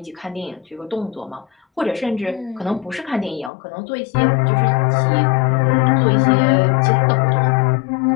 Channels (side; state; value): right; drops out; at 3.5 s